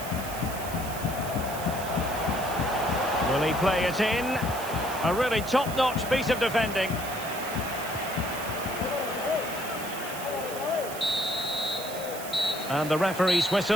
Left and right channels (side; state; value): right; noise; hiss, 11 dB below the sound